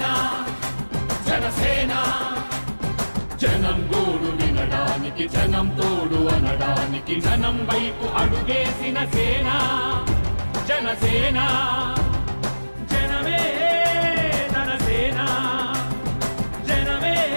జనసేన జనం గోడు వినడానికి జనం తోడు అనడానికి జనం వైపు అడుగేసిన సేన జనసేన జనమే తన సేన జనమే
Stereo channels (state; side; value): inverted; both; correlation -1.00